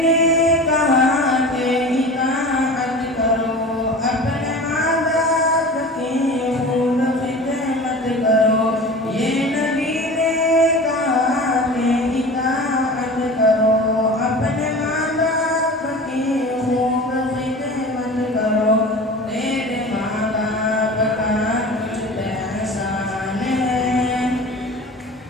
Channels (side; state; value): both; normal; correlation 0.36